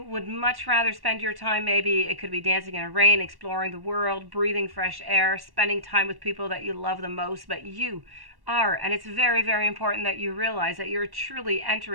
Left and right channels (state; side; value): late; left; 1.1 ms